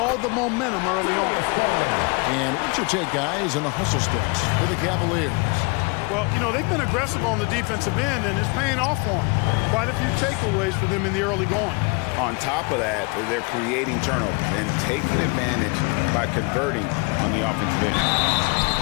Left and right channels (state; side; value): quieter; right; 30.1 dB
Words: the momentum early on. And what's your take, guys, in the hustle sticks for the Cavaliers? Well, you know, they've been aggressive on the defensive end, and it's paying off for them. Quite a few takeaways for them in the early going. On top of that, they're creating turnovers and taking advantage by converting on the offensive end.